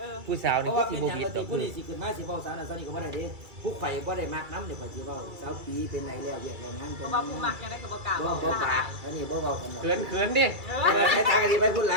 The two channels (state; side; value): late; left; 2.3 ms